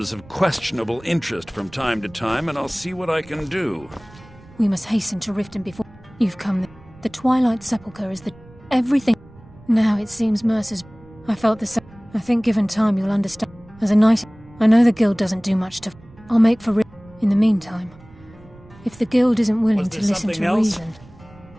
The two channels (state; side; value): noise; right; rumble, 23 dB below the sound